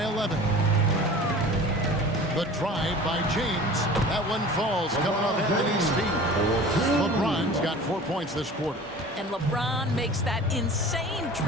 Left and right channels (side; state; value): both; normal; correlation 0.41